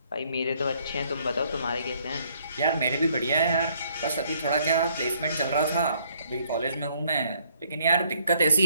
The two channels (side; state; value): both; inverted; correlation -0.66